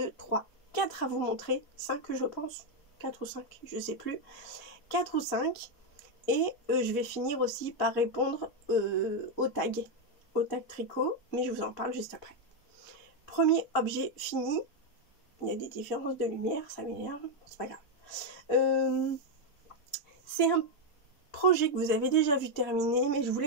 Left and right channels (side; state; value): right; late; 4.2 ms